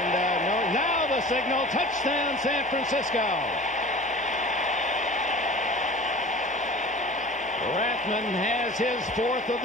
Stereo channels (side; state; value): both; normal; correlation 0.40